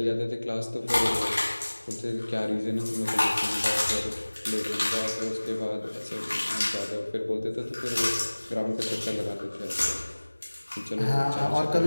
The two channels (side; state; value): both; inverted; correlation -1.00